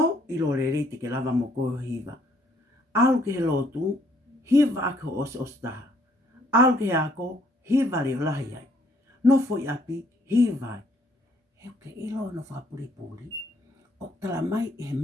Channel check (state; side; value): normal; both; correlation 0.66